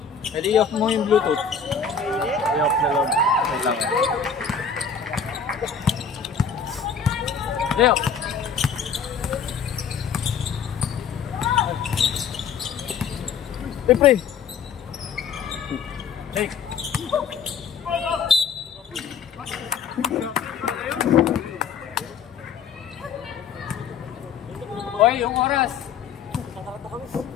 Pwede i-off mo yung Bluetooth. I-off na lang. Wait lang. Leo. Pre. Take. Hoy, yung oras.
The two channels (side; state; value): right; quieter; 6.3 dB